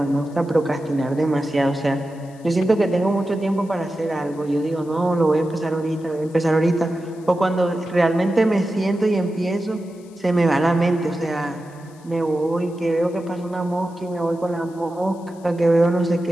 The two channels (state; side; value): noise; left; hiss, 28 dB below the sound